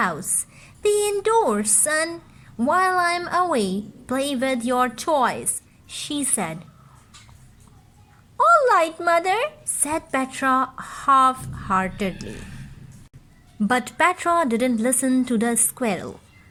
Be indoors, son. While I'm away, play with your toys, she said. All right, mother, said Petra half-heartedly. But Petra didn't listen to the squirrel.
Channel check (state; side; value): identical; both; correlation 1.00